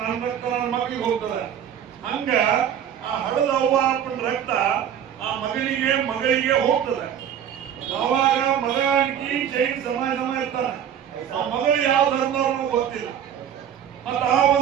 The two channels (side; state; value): left; quieter; 9.3 dB